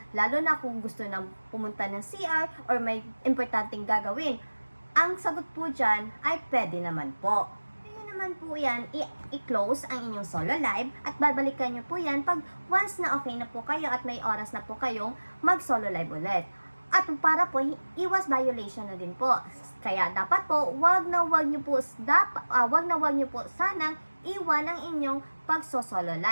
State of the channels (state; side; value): inverted; both; correlation -1.00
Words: Lalo na kung gusto nang pumunta ng CR or may importanteng gagawin. Ang sagot po dyan ay pwede naman po. Naman po yan, i-close ang inyong solo live at babalikan nyo po yan pag once na okay na po kayo at may oras na po kayong mag-solo live ulit. At para po, iwas violation na din po. Kaya dapat po, wag na wag nyo po sanang iwan ang inyong pag-solo